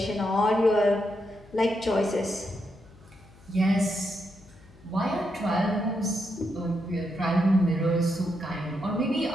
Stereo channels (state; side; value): noise; left; hum, 25 dB below the sound